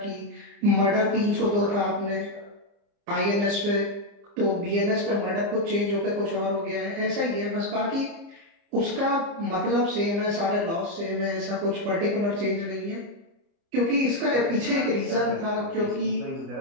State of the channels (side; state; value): left; late; 30 ms